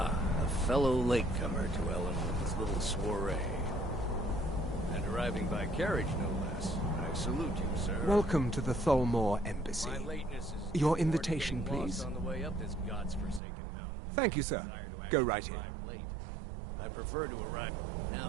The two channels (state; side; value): drops out; left; at 13.4 s